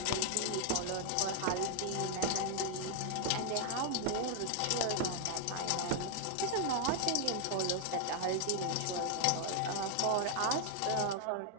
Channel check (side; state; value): both; different; correlation 0.00